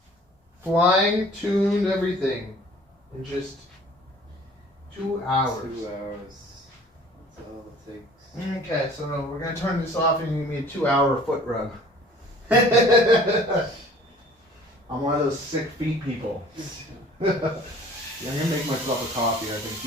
flying, tuned, everything in just 2 hours. 2 hours. That's all it takes. Okay, so we're going to turn this off and give me a 2-hour foot rub. I'm one of those sick feet people. Yeah, I'm going to make myself a coffee, I think. Do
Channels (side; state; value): both; normal; correlation 0.50